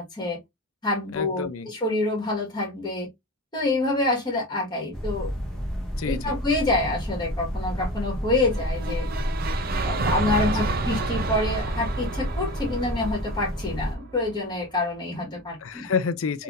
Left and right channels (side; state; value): both; normal; correlation 0.29